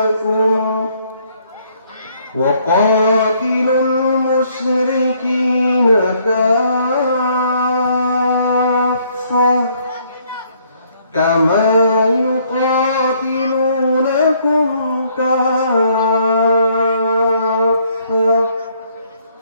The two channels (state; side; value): inverted; both; correlation -0.67